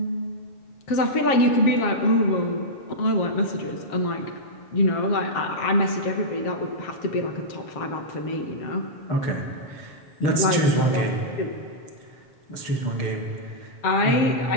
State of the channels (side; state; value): right; late; 7.4 ms